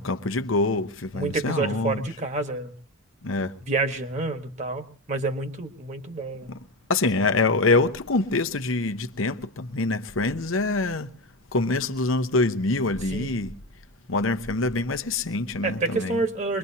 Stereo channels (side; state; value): both; normal; correlation 0.20